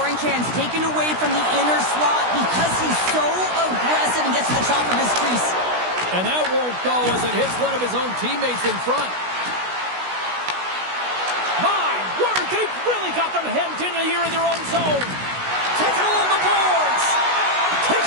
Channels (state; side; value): late; left; 16 ms